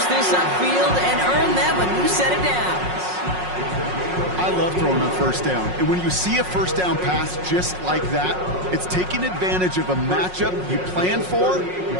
this upfield and earn them a new set of downs. I love throwing on first down. And when you see a first down pass just like that, it's taking advantage of a matchup you plan for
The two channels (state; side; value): late; left; 5.5 ms